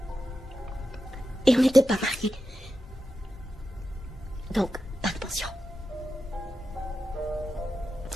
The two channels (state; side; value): normal; both; correlation 0.90